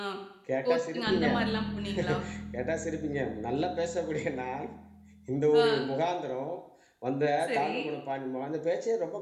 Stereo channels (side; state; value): both; identical; correlation 1.00